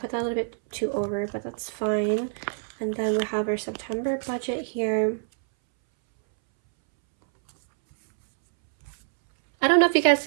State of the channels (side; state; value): left; silent; 61 dB below the other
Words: that a little bit too over, but that's fine. And then we have our September budget here. I don't know if you guys